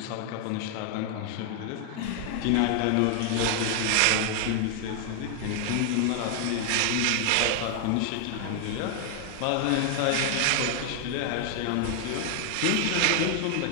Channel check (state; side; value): different; both; correlation 0.00